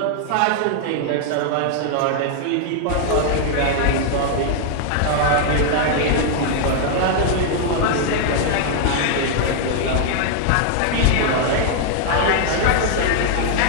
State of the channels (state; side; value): different; both; correlation 0.00